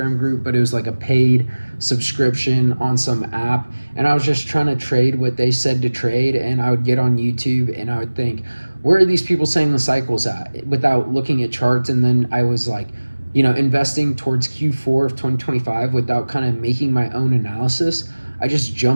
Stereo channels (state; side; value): inverted; both; correlation -1.00